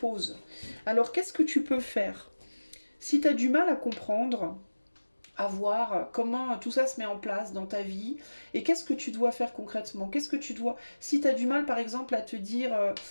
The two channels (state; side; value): inverted; both; correlation -1.00